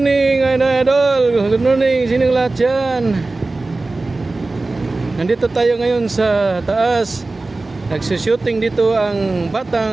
Good morning, sining lahat dyan. Nandito tayo ngayon sa taas. Nagsushooting dito ang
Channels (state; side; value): quieter; left; 3.3 dB